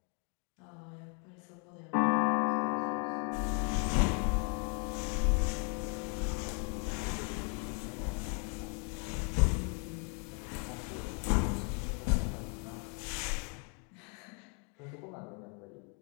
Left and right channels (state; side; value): quieter; right; 37.9 dB